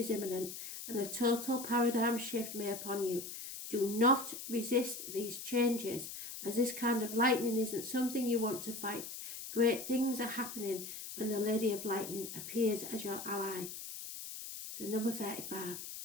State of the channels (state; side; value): noise; left; hiss, 9 dB below the sound